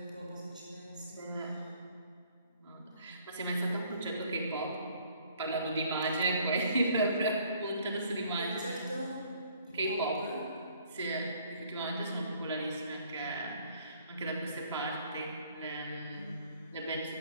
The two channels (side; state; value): both; inverted; correlation -0.61